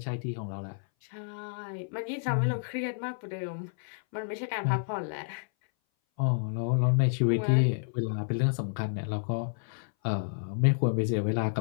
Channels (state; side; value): silent; right; 58 dB below the other